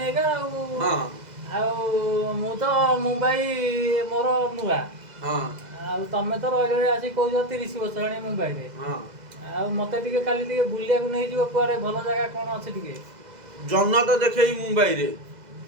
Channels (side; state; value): left; late; 2.0 ms